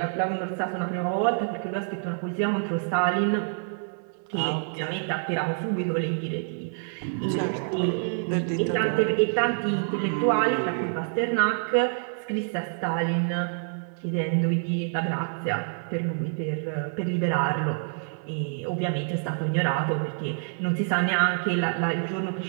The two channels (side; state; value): left; silent; 60 dB below the other